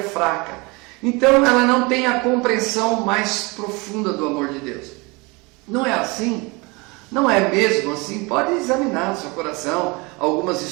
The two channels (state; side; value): quieter; left; 26.9 dB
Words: fraca. Então ela não tem a compreensão mais profunda do amor de Deus. Não é assim? Não é mesmo assim? Pode examinar no seu coração algumas